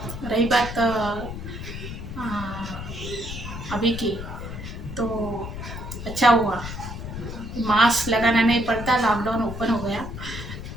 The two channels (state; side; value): noise; left; rumble, 8 dB below the sound